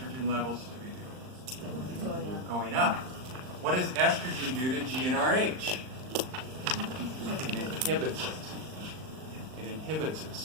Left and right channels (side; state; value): left; late; 39 ms